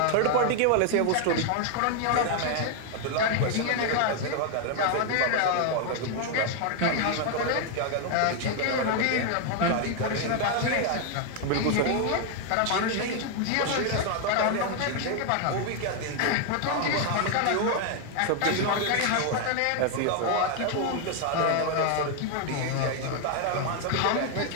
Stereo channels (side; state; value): both; different; correlation 0.00